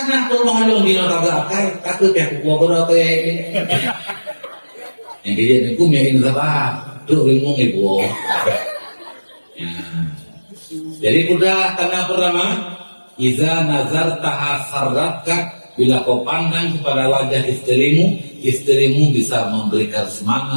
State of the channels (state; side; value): inverted; both; correlation -1.00